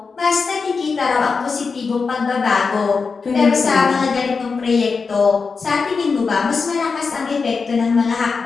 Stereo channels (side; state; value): right; quieter; 4.9 dB